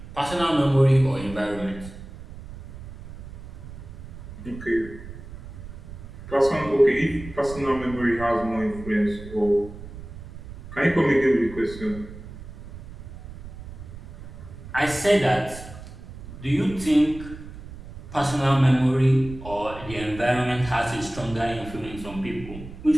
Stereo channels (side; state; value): right; noise; rumble, 14 dB below the sound